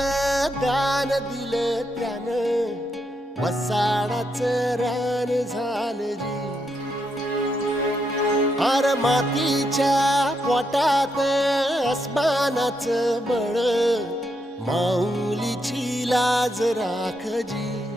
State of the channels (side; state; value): both; normal; correlation 0.80